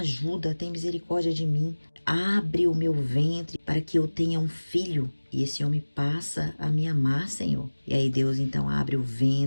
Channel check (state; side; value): inverted; both; correlation -1.00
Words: tenha misericórdia de mim. Abre o meu ventre para que eu tenha um filho. E esse homem passa a me amar, Senhor. E aí Deus então abre o